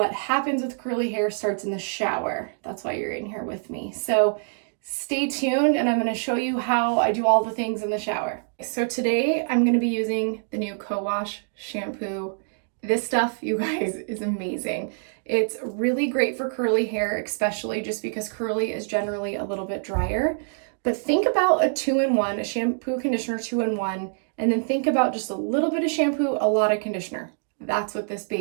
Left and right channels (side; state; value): left; silent; digital silence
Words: happens with curly hair starts in the shower. That's why you're in here with me. So stay tuned and I'm going to show you how I do all the things in the shower. So today I'm going to be using the new Co-Wash shampoo. This stuff, you guys, is amazing. It's really great for curly hair, especially just because curly is generally a little bit drier. But think about a 2-in-1, a shampoo conditioner 2-in-1, and then think about just a little bit of shampoo, a lot of conditioner. That's what this